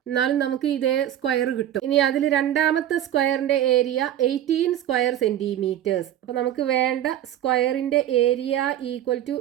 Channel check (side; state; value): left; quieter; 11.7 dB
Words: എന്നാലും നമുക്ക് ഇതേ സ്ക്വയർ കിട്ടും. ഇനി അതിൽ രണ്ടാമത്തെ സ്ക്വയറിന്റെ ഏരിയ 18 സ്ക്വയർ സെന്റിമീറ്റേഴ്സ്. അപ്പൊ നമുക്ക് വേണ്ട സ്ക്വയറിന്റെ area equal to